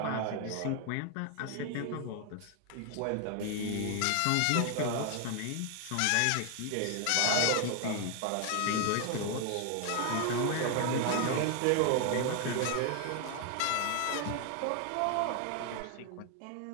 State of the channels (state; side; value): different; both; correlation 0.00